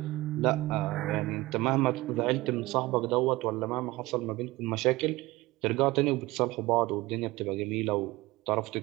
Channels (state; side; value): quieter; left; 19.9 dB